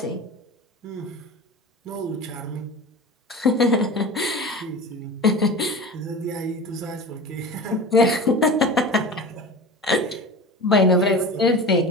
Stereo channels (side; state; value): both; normal; correlation 0.33